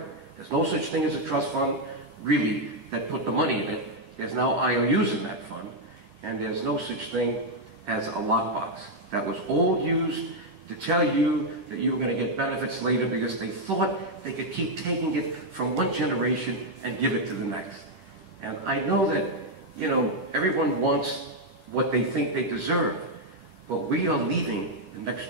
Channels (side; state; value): left; late; 11 ms